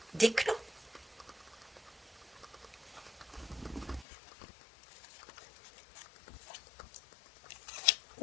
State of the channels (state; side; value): drops out; right; at 4.0 s